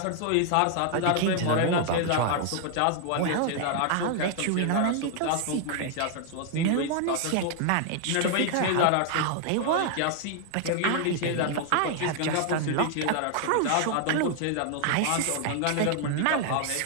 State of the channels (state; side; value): different; both; correlation 0.00